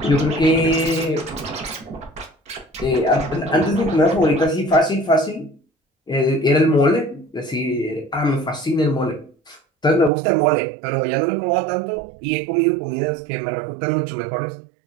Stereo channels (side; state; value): left; drops out; at 10.1 s